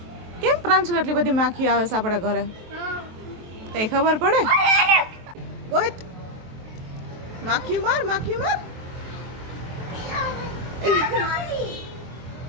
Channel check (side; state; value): left; late; 23 ms